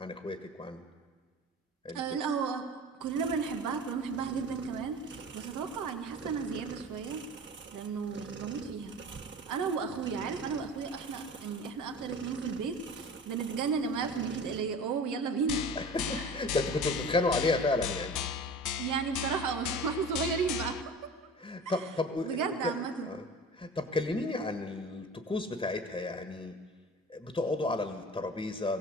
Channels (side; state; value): both; normal; correlation 0.37